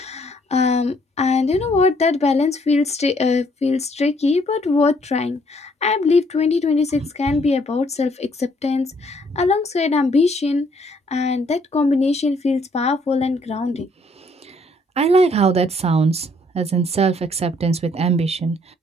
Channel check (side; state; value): both; normal; correlation 0.66